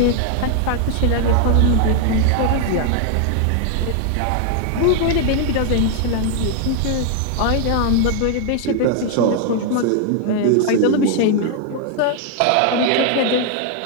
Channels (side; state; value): both; different; correlation 0.00